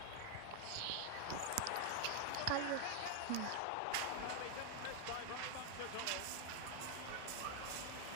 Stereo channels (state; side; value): different; both; correlation 0.00